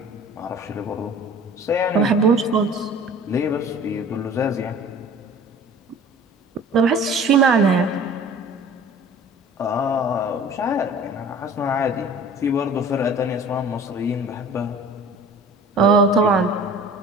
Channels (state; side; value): normal; both; correlation 0.45